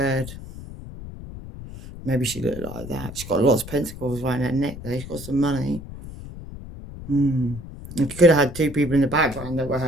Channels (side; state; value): left; noise; rumble, 12 dB below the sound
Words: Maybe she looked like that. She's got lots of pentacles around her neck though. She's got some money. And she could have had two people in the background that were